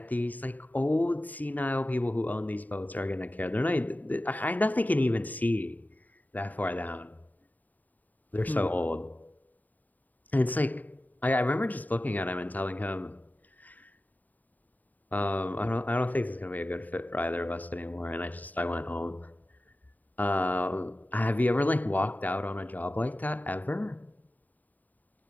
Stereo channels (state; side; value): late; right; 0.082 ms